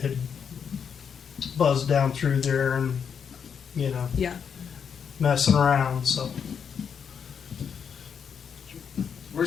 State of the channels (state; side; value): quieter; right; 7.1 dB